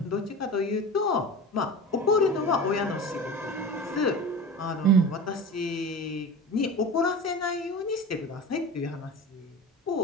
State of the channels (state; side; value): normal; both; correlation 0.32